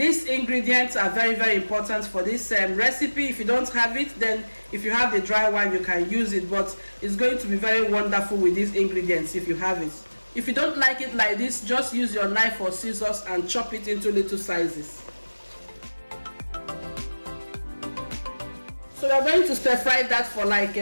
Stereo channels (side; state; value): both; inverted; correlation -1.00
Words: ingredients are very important for this recipe. If you don't have it, then if you have the dry one you can use it, but it's going to be very wonderful with these ingredients if you have it. If you don't like it like this, just use your knife or scissors and chop it into little sizes. So we're going to stir fry that for like